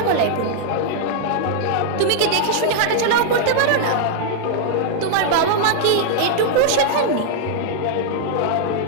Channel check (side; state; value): both; different; correlation -0.01